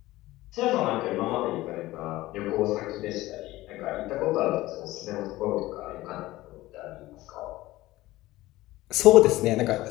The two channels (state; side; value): quieter; right; 17.6 dB